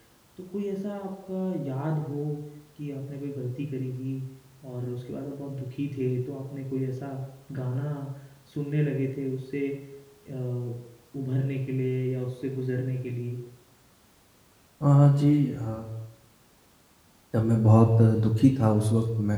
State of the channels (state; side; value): identical; both; correlation 1.00